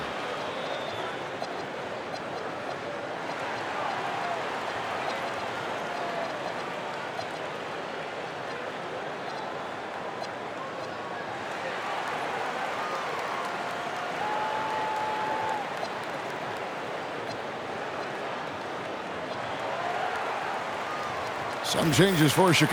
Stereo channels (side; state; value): both; identical; correlation 1.00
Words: Some changes for